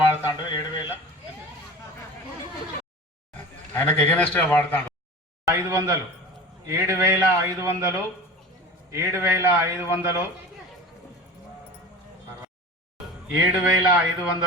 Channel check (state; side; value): normal; both; correlation 0.35